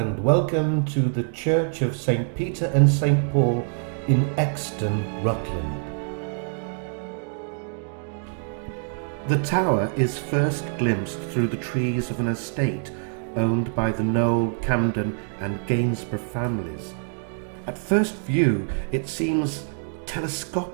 welcome to the Church of St. Peter and St. Paul in Exton, Rutland. The tower is first glimpsed through the trees of an estate owned by the Noel, Camden and Gainsborough families. At first view, it seems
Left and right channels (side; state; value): left; silent; 62 dB below the other